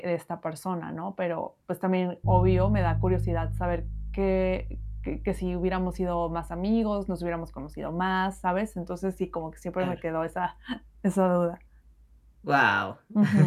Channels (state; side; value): identical; both; correlation 1.00